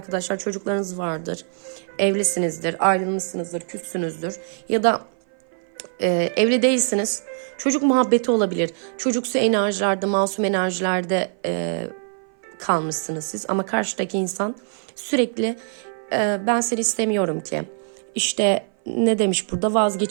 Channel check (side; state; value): left; silent; 59 dB below the other